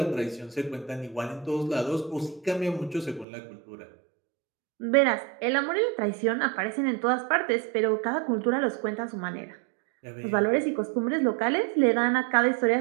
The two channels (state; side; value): drops out; left; at 3.2 s